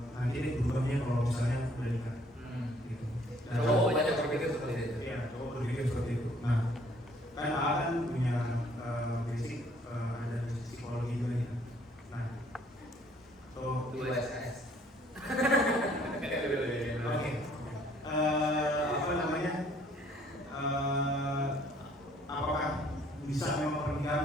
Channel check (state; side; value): normal; both; correlation 0.61